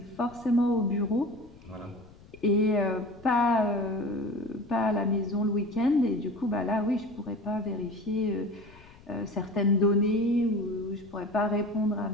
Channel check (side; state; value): left; noise; rumble, 23 dB below the sound